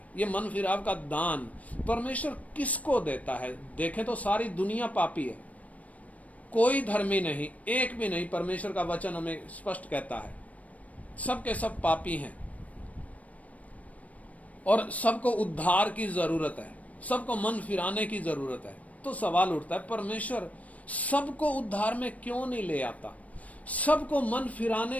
ये मन फिराव का दान परमेश्वर किसको देता है? देखें तो सारी दुनिया पापी है, कोई धर्मी नहीं, एक भी नहीं। परमेश्वर का वचन हमें स्पष्ट कहता है सब के सब पापी हैं और सबको उद्धार की जरूरत है, सबको मन फिराने की जरूरत है। तो सवाल उठता है, परमेश्वर सबको उद्धार में क्यों नहीं ले आता? सबको मन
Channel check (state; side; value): late; right; 0.068 ms